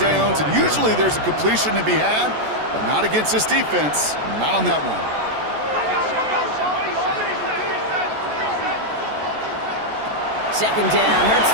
and usually there's a completion to be had, but not against this defense, not on that one. Second down, Hurts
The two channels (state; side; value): late; left; 14 ms